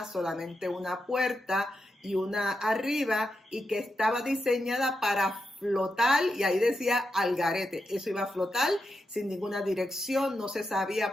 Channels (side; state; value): both; normal; correlation 0.86